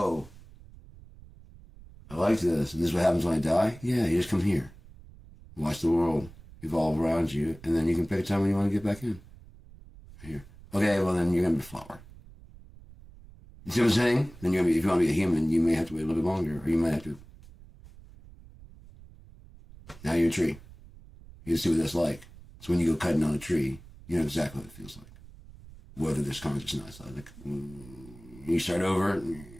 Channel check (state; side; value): noise; right; rumble, 20 dB below the sound